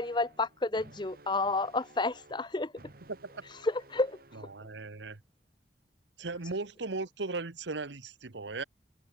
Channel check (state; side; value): normal; both; correlation 0.23